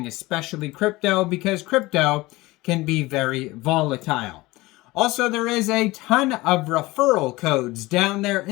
especially crypto, because crypto can be very volatile. Also, there is a ton of referral codes down there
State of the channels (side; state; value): right; quieter; 20.5 dB